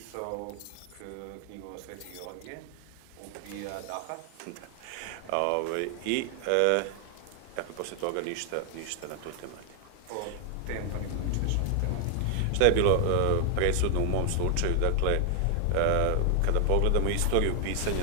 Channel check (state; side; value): different; both; correlation 0.00